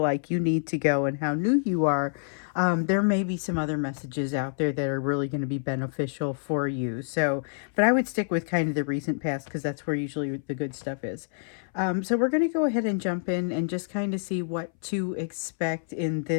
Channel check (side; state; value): right; silent; 60 dB below the other